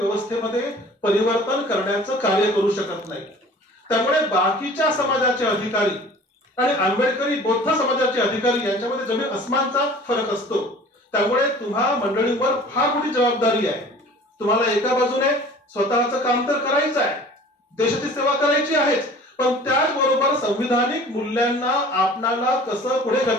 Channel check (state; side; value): normal; both; correlation 0.46